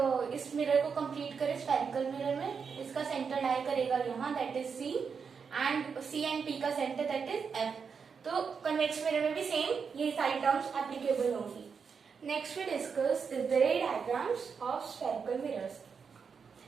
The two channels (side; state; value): left; quieter; 6.0 dB